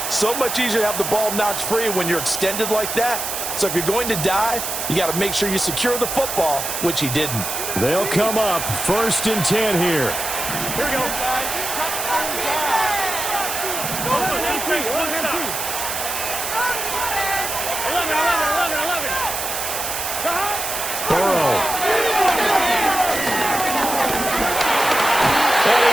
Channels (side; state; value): right; noise; hiss, 4 dB below the sound